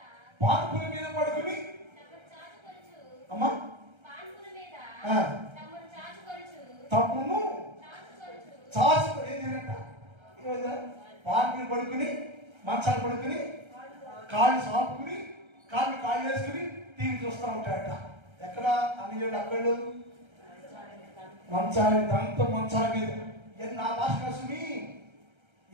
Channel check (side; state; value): left; late; 1.3 ms